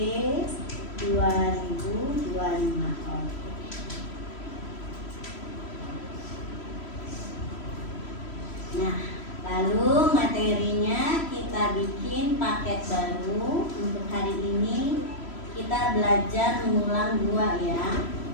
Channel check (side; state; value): right; late; 3.1 ms